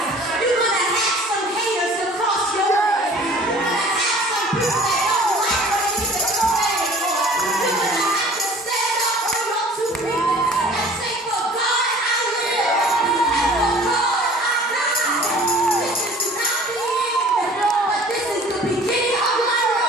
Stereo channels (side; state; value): both; normal; correlation 0.48